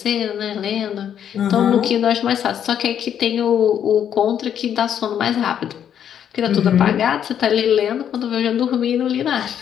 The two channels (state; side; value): quieter; right; 9.2 dB